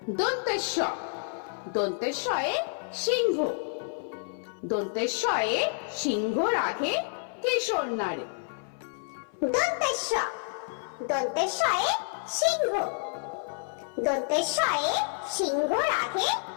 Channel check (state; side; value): silent; right; 56 dB below the other